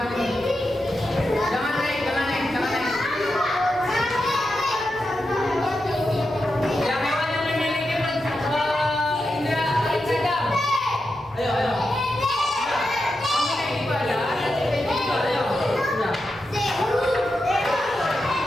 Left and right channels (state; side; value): normal; both; correlation 0.88